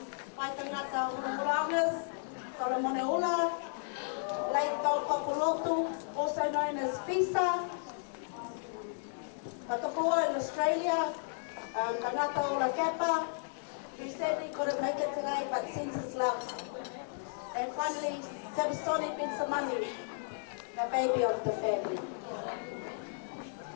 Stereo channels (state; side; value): silent; right; 55 dB below the other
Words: my Tangata Tauolungas, Solomoneula, Late Taupapulotu, also known as FISA, Patapoa in Australia, Tangata Ola Kappa, who sadly couldn't make it today but sends his love. And finally, Sabasoni Bensamani, the baby of the family.